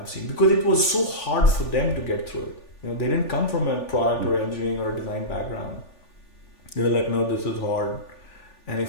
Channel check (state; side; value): late; right; 3.4 ms